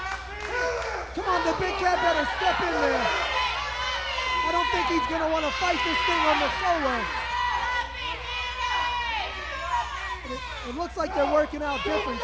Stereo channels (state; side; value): identical; both; correlation 1.00